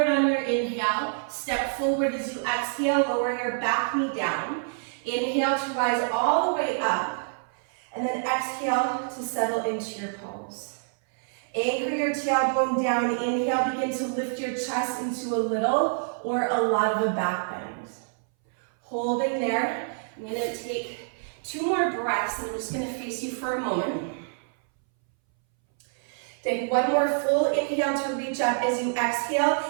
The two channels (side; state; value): left; silent; 60 dB below the other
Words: on your inhale. Step forward as you exhale, lower your back knee down. Inhale to rise all the way up. And then exhale to settle into your pose. Anchor your tailbone down. Inhale, begin to lift your chest into a little or a lot of a back bend. Holding there, I'm going to take 2 more breaths, and I'm just going to face you for a moment. Take 1 more full inhale to reach up. As you exhale,